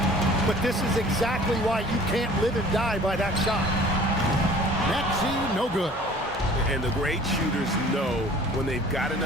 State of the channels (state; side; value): normal; both; correlation 0.49